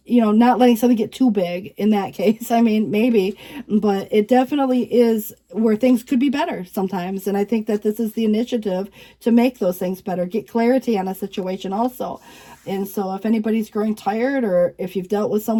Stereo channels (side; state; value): both; identical; correlation 1.00